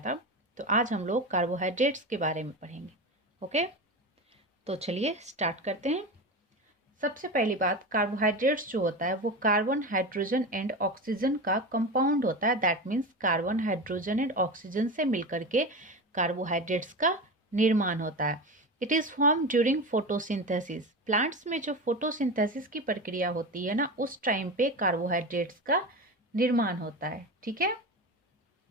तो आज हम लोग कार्बोहाइड्रेट्स के बारे में पढ़ेंगे। ओके, तो चलिए स्टार्ट करते हैं। सबसे पहली बात, कार्बोहाइड्रेट्स जो होता है वो कार्बन, हाइड्रोजन एंड ऑक्सीजन का कंपाउंड होता है। That means carbon, hydrogen and oxygen से मिलकर के कार्बोहाइड्रेट्स का निर्माण होता है। It is form during photosynthesis. Plants में जो फोटोसिंथेसिस की प्रक्रिया होती है ना, उस टाइम पे कार्बोहाइड्रेट्स का निर्माण होता है। ठीक है,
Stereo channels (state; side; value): normal; both; correlation 0.24